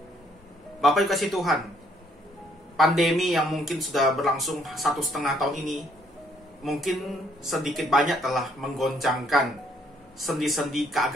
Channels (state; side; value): normal; both; correlation 0.67